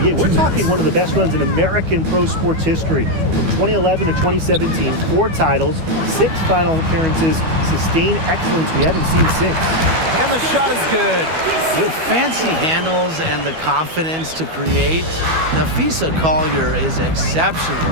we're talking one of the best runs in American pro sports history. From 2011 to 2017, 4 titles, 6 final appearances, sustained excellence we haven't seen since. And the shot is good. With fancy handles and the confidence to create, Napheesa Collier is exceptional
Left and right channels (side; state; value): left; late; 12 ms